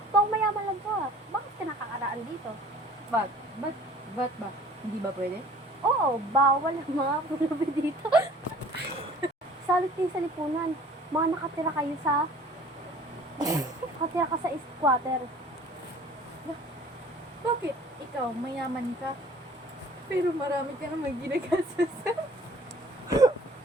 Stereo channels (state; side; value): normal; both; correlation 0.50